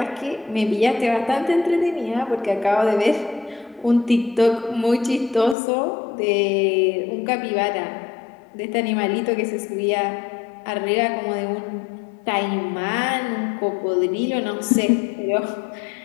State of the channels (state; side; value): drops out; right; at 5.6 s